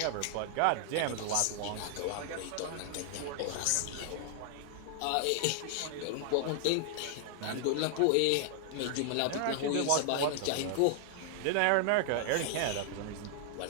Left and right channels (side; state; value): both; different; correlation 0.00